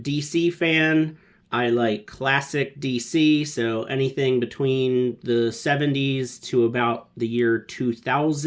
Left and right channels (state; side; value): identical; both; correlation 1.00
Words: DC fan. I like classic DC, so anything between the 70s to about the year